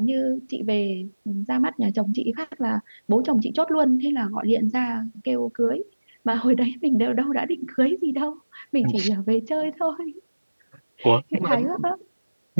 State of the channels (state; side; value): inverted; both; correlation -1.00